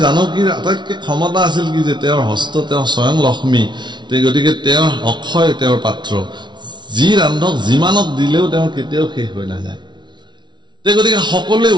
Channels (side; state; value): left; late; 0.22 ms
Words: জানকীৰ আটাইতকৈ ক্ষমতা আছিল কি যে তেওঁৰ হস্ত তেওঁ স্বয়ং লক্ষ্মী গতিকে তেওঁৰ অক্ষয় তেওঁৰ পাত্ৰ যি ৰান্ধক যিমানক দিলেও তেওঁৰ কেতিয়াও শেষ হৈ নাযায় গতিকে সকলোৱে